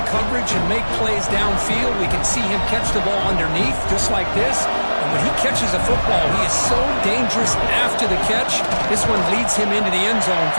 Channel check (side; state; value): both; inverted; correlation -1.00